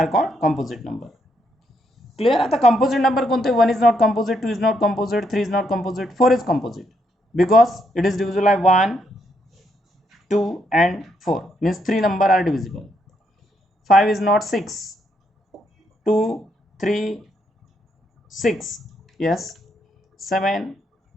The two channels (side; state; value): both; normal; correlation 0.76